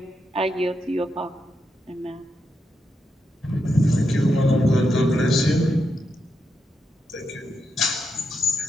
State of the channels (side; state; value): both; normal; correlation 0.84